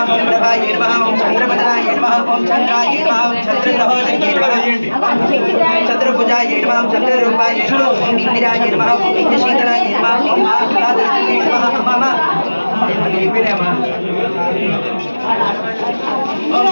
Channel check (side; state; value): both; inverted; correlation -1.00